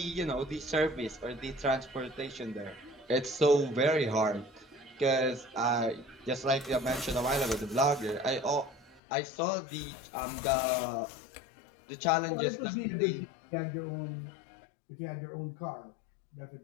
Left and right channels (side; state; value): right; drops out; at 9.0 s